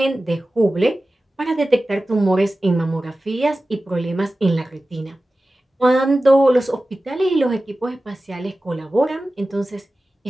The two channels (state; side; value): normal; both; correlation 0.95